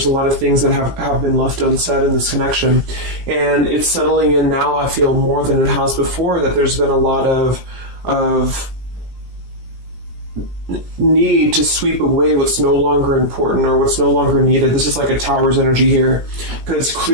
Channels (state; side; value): late; left; 17 ms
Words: a lot of things that have been left unsaid in this connection. And it's settling in now, I feel, more than it has before, that there's been a lot of need to sweep away what's no longer important or what's no longer needed. This is like a Tower's energy here, because